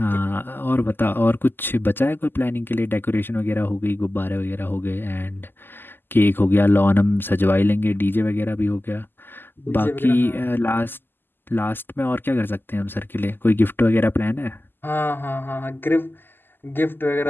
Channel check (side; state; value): right; late; 0.096 ms